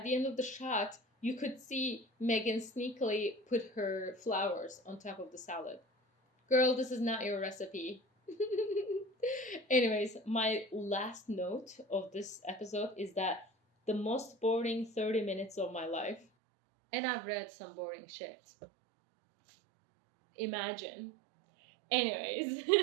the shot, you could see Megan sneakily put her flowers on top of the salad. Girl, this is not your recipe. Anyways, my last note of this episode is that the most boring 30 minutes of my life, and I've read some boring shit. Imagine. Anyways,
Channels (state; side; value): drops out; left; at 16.2 s